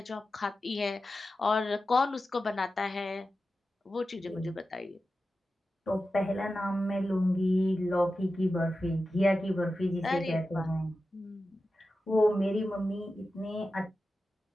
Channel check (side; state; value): both; normal; correlation 0.92